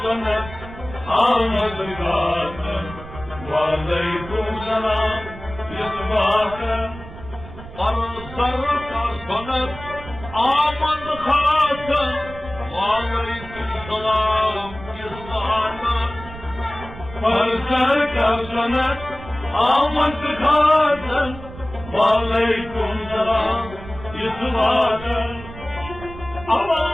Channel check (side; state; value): right; noise; rumble, 15 dB below the sound